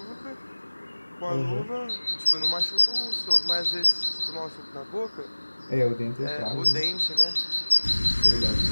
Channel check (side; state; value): both; inverted; correlation -1.00